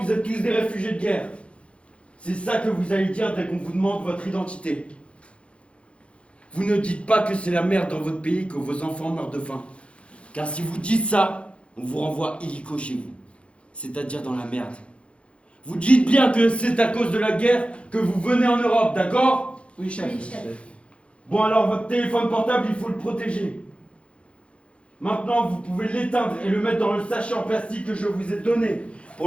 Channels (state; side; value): late; right; 0.060 ms